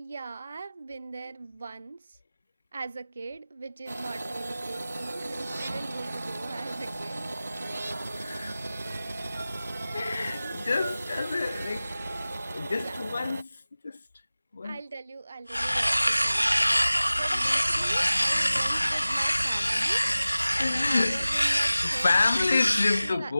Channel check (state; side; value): inverted; both; correlation -0.96